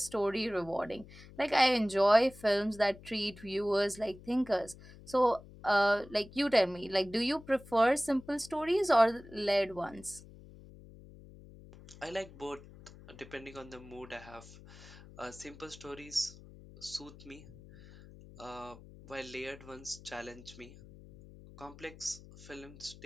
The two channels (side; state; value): left; noise; hum, 19 dB below the sound